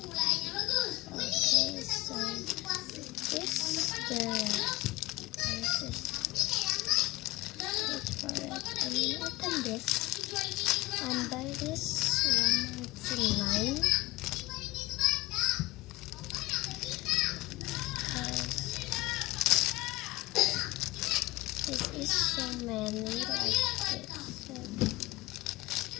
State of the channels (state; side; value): quieter; right; 20.4 dB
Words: okay, so this the wait for it. I mean, open this and buy this one. It's 9. This is so many like this.